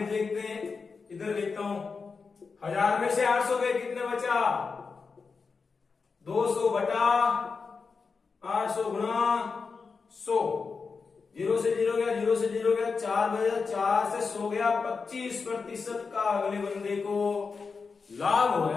देखते हैं, इधर देखता हूं, 1000 में से 800 गए, कितने बचा, 200 बटा 800 गुणा 100। 0 से 0 गया, 0 से 0 गया, 4 बजा, 4 से 100 गया, 25% का अगले बंदे को लाभ हो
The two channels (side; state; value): right; quieter; 4.9 dB